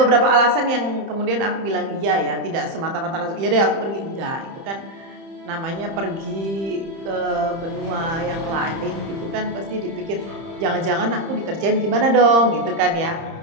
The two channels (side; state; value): left; late; 30 ms